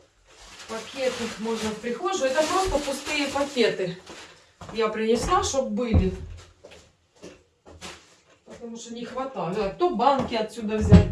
Пакеты можно в прихожую. Это просто пустые пакеты. Я принесла, чтобы были. Потому что не хватает. То банки отсюда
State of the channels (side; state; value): both; identical; correlation 1.00